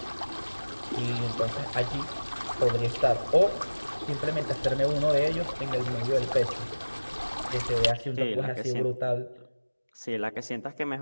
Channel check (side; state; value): both; inverted; correlation -1.00